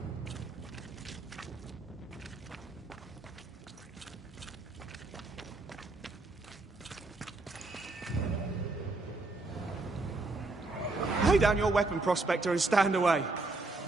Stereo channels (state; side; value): quieter; left; 3.3 dB